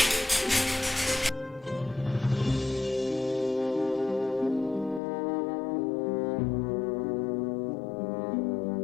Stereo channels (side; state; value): right; drops out; at 5.0 s